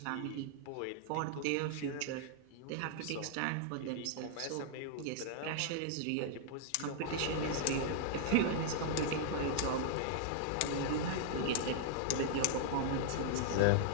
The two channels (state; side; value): different; both; correlation -0.01